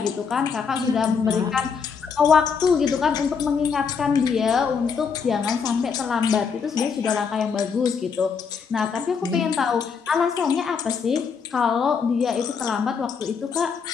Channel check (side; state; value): right; quieter; 6.0 dB